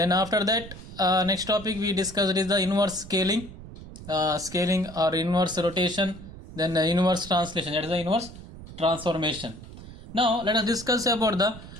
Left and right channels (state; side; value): noise; right; rumble, 15 dB below the sound